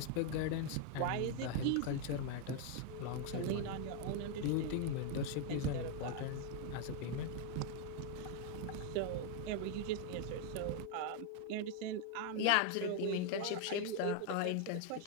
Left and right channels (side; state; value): both; different; correlation 0.01